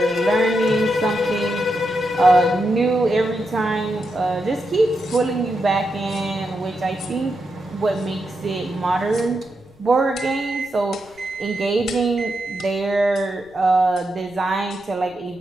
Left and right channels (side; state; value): left; noise; rumble, 28 dB below the sound